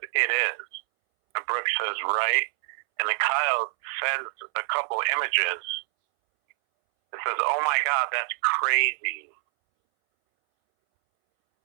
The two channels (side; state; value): left; silent; 61 dB below the other